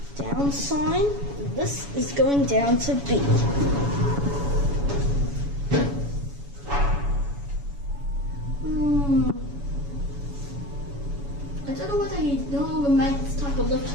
down sign. This is going down to B. I don't know whether he no longer makes this type of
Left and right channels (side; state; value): left; late; 7.1 ms